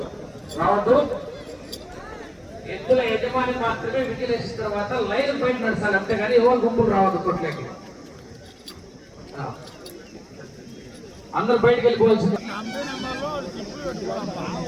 రావద్దు. ఎద్దుల యజమాని మాత్రమే విజిలేసిన తర్వాత లైన్ బయట నడచాలి, అంతేగాని ఎవరు గుంపులు రావద్దు కొట్లకి. అందరు బయటకు వెళ్ళిపోవాల్సింది.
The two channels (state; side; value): identical; both; correlation 1.00